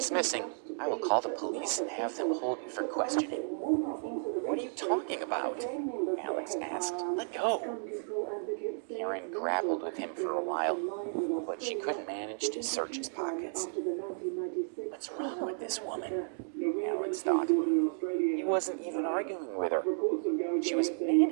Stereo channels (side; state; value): left; silent; digital silence